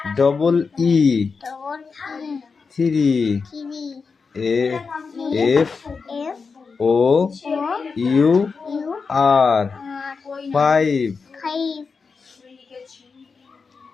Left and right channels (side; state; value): right; quieter; 5.0 dB